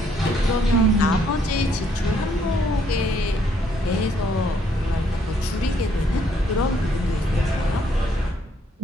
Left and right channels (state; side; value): normal; both; correlation 0.68